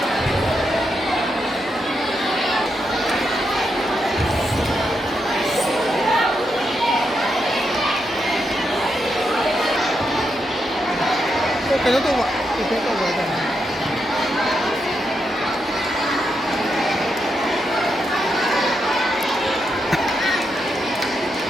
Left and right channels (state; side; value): normal; both; correlation 0.83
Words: cái đó tôi gọi cái tôi gọi là